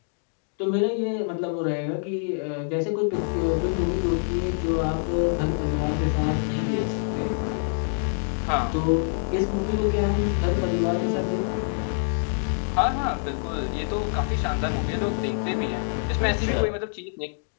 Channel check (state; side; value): silent; right; digital silence